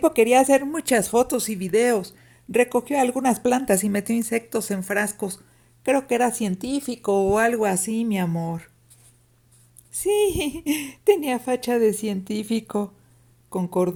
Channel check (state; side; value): identical; both; correlation 1.00